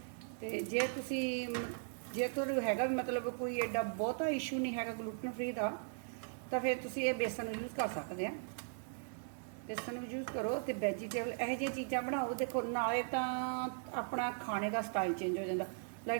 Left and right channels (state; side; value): silent; left; 52 dB below the other